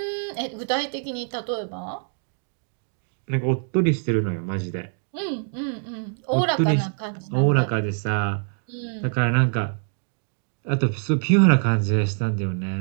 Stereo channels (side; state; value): left; silent; 62 dB below the other